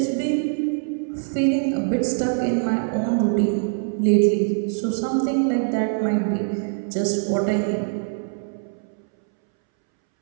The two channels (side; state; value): left; silent; 63 dB below the other